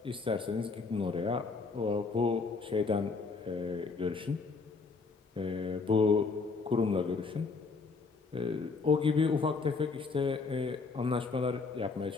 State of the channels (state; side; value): quieter; right; 4.4 dB